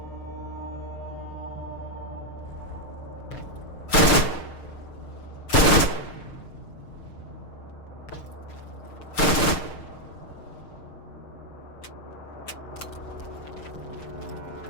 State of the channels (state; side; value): late; right; 6.6 ms